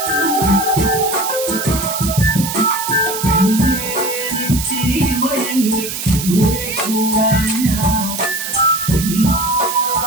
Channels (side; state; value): right; noise; hiss, 6 dB below the sound